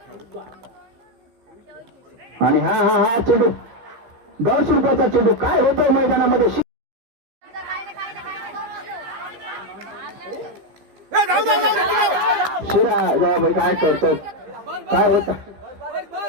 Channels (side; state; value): left; late; 15 ms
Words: आणि हा चेंडू 150 रुपयाचा चेंडू. काय होतंय मैदानामध्ये? शिरा भाई काय करतात? काय होत?